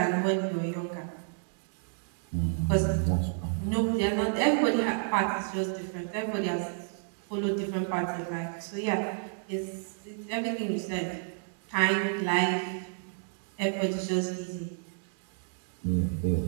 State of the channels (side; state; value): left; silent; digital silence